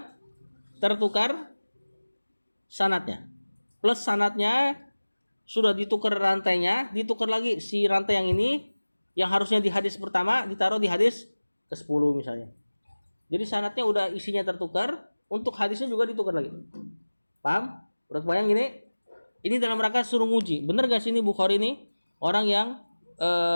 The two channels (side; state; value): both; inverted; correlation -1.00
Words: tertukar sanadnya. Plus sanadnya sudah ditukar rantainya, ditukar lagi si rantai yang ini yang harusnya di hadis pertama ditaruh di hadis ke-10 misalnya. Jadi sanadnya udah isinya tertukar, untuk hadisnya juga ditukar lagi. Paham? Udah kebayang gini? Ini dalam rangka suruh nguji. Bener gak sih ini Bukhari ini orang yang